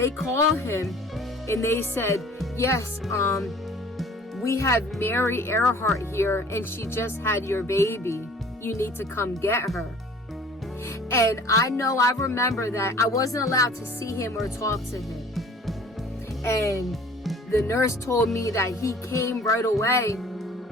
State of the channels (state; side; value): normal; both; correlation 0.50